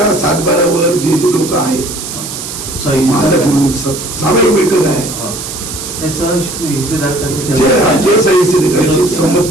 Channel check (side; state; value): right; noise; hiss, 8 dB below the sound